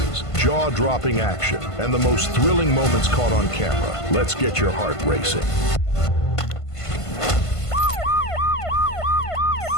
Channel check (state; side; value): late; right; 1.5 ms